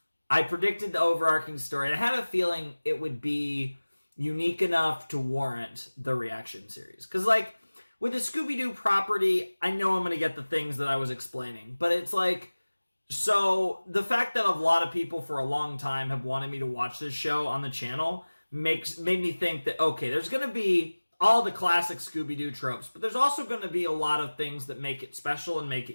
I predicted the overarching story, and I had a feeling it would be unique enough to warrant the reaction series. Because, like, with the Scooby-Doo property, I know I'm going to get the things that I was explaining. But it's like, so the fact that a lot of people for a long time have wanted me to watch this show on the channel made me think that, okay, there's going to be all the classic Scooby-Doo tropes, but there's also going to be a lot of things that make it special and make it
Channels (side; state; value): both; inverted; correlation -1.00